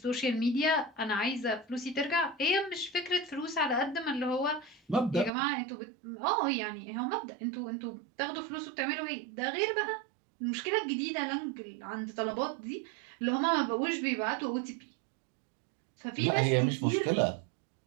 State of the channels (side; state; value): left; drops out; at 5.3 s